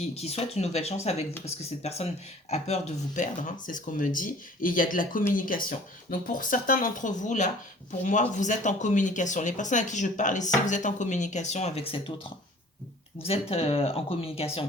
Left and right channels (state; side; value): normal; both; correlation 0.50